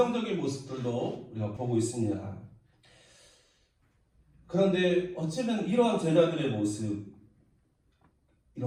모습들도 우리가 보고 있습니다. 그런데 어쩌면 이러한 제자들의 모습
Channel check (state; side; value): identical; both; correlation 1.00